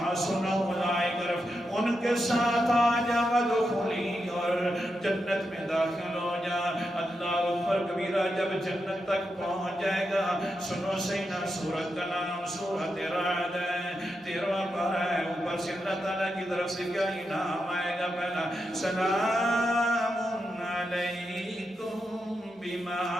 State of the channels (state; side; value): normal; both; correlation 0.86